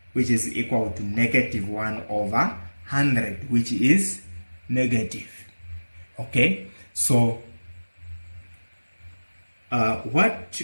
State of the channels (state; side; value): inverted; both; correlation -1.00